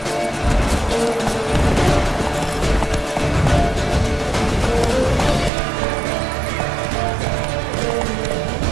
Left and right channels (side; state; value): left; drops out; at 5.5 s